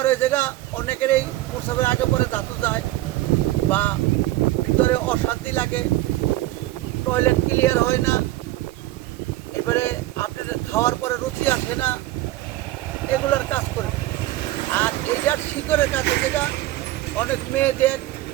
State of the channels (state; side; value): quieter; left; 16.4 dB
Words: হয়ে জায়গা অনেকের এই প্রসবের আগে পরে ধাতু যায় বা ভিতরে অশান্তি লাগে, টয়লেট ক্লিয়ার হয় না, এবারে আপনার খাওয়ার পরে রুচি আসে না, এগুলোর কাজ করে। আর এইটার শিকড়ের কাছে যেটা অনেক মেয়েদের